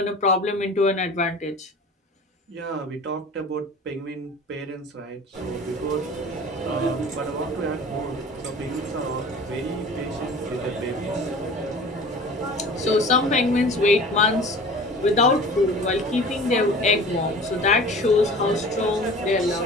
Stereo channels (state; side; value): normal; both; correlation 0.41